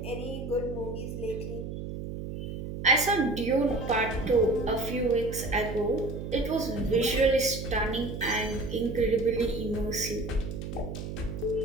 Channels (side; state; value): right; noise; hum, 7 dB below the sound